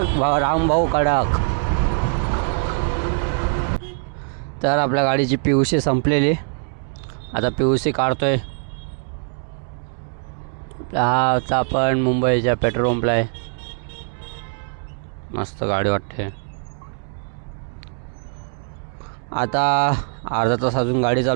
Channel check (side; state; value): left; silent; 58 dB below the other